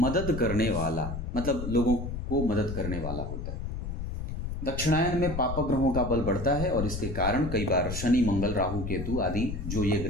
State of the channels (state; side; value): noise; left; rumble, 5 dB below the sound